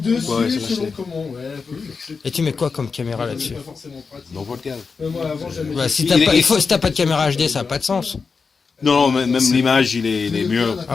Dessus, Ouais, c'est selon lâché. comment. Ouais, c'est Et tu mets quoi comme caméra là-dessus? pas forcément pratique. Dans votre cave. Moi, avant, j'aimais. Bah, si t'as pas de caméra HD, ça n'a pas de sens. Non, même l'image, il est mieux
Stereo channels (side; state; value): right; quieter; 5.0 dB